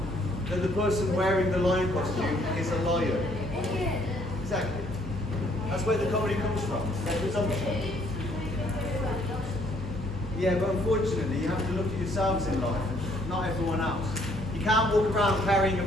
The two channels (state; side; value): normal; both; correlation 0.65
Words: that the person wearing the lion costume is a lion. Exactly. That's where the comedy comes from. That presumption. Yeah, but unfortunately, you have to look at yourselves in life, not everyone else. You can't walk around carrying a